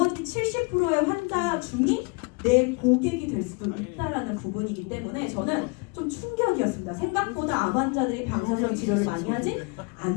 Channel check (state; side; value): quieter; right; 30.7 dB